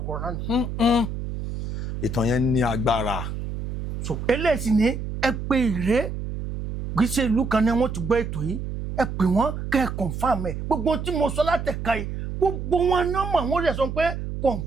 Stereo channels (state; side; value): noise; right; hum, 5 dB below the sound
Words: náà ni. ìtàn yẹn ní agbára. so eléyìí ni ẹ pé Ìré kì í ṣe ìlú kan ni wọ́n ti gbọ́ ètò yìí ẹ pè wọ́n kẹ́ ẹ confam ẹ gbogbo tí mo sọ látẹ̀ka yìí gbogbo wọn náà mọ̀ wọ́n lè sọ pé